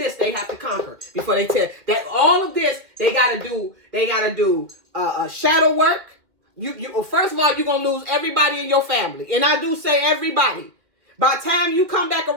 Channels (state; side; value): late; left; 2.3 ms